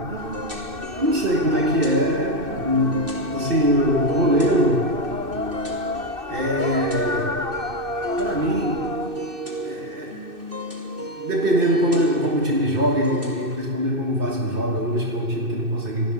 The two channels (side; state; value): left; late; 2.6 ms